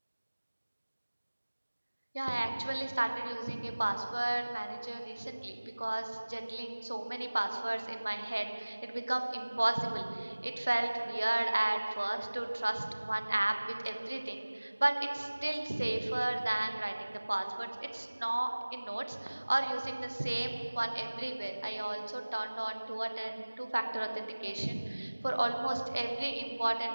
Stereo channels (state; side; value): inverted; both; correlation -1.00